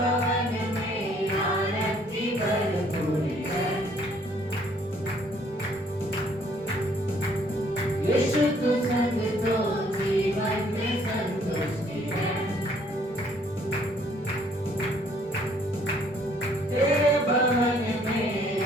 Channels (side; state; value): both; normal; correlation 0.63